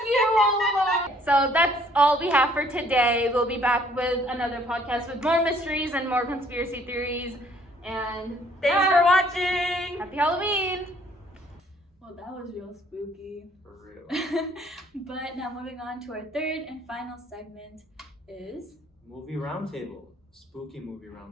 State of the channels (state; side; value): normal; both; correlation 0.61